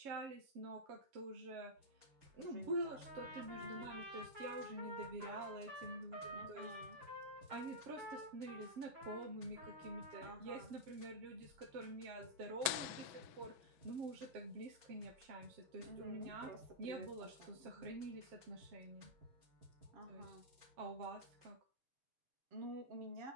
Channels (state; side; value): late; left; 6.2 ms